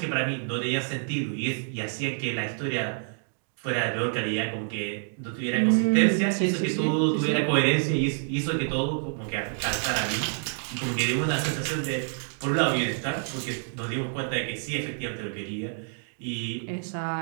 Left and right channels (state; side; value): silent; left; 60 dB below the other